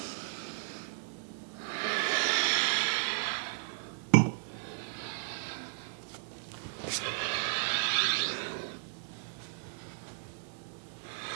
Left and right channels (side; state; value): left; silent; digital silence